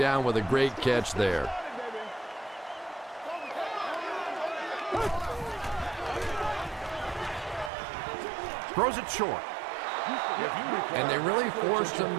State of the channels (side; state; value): left; drops out; at 7.7 s